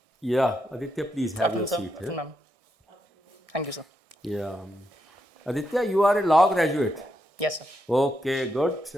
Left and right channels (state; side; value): normal; both; correlation 0.82